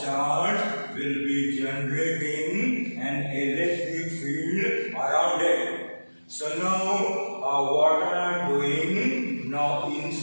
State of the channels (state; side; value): inverted; both; correlation -1.00